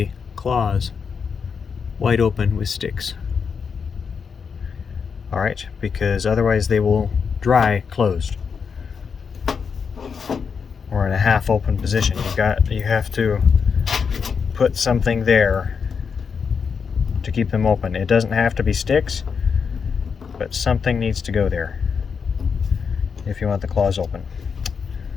claws wide open with sticks. Alright, because otherwise they will dry closed, or in a half open position. You have to put something there to keep them open. It doesn't have to be sticks, but something needs to go there if you want the claws open.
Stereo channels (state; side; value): quieter; right; 6.0 dB